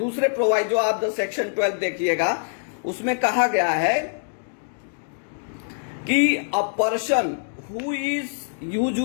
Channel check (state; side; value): silent; right; digital silence